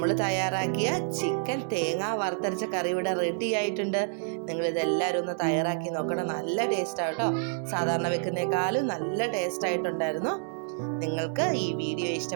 തയ്യാറാക്കിയ ചിക്കൻ തേങ്ങ വറുത്തരച്ച കറി ഇവിടെ റെഡി ആയിട്ടുണ്ട്. നിങ്ങളിതെല്ലാവരും ഒന്ന് തയ്യാറാക്കി നോക്കണം. നല്ല ടേസ്റ്റാണ് കേട്ടോ. സാധാരണ വെക്കുന്നേക്കാളും നല്ല ടേസ്റ്റ് ആയിട്ടുണ്ടായിരുന്നു. നിങ്ങൾക്ക് ഈ വീഡിയോ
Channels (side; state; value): left; silent; digital silence